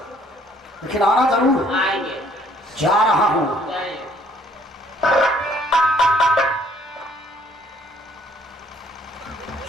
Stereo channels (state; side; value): normal; both; correlation 0.61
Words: लेकिन आना जरूर। आएंगे। जा रहा हूँ।